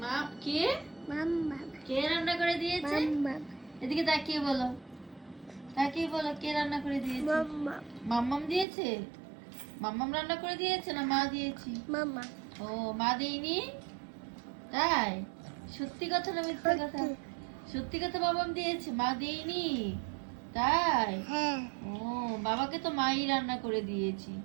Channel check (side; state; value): left; drops out; at 8.7 s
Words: মা? কে? মাম্মা। কে রান্না করে দিয়েছে? মাম্মা। এদিকে তাকিয়ে বলো, তাকিয়ে বলো কে রান্না করে দিয়েছে? মাম্মা। মাম্মাম দিয়েছে? মাম্মাম রান্না করে দিয়েছে না মা দিয়েছি? মাম্মা। ও, মা দেয়নি? তাই? সত্যি কথা না মিথ্যা কথা? সত্যি। সত্যি কথা, বাবাম দিয়েছে, মা দেয়নি? তাই? হ্যাঁ। ও, বাবাকে তো মাই রান্না করে দিয়েছি।